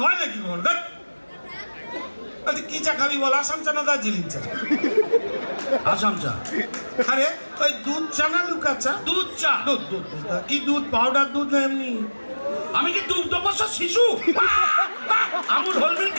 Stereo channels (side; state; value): both; inverted; correlation -1.00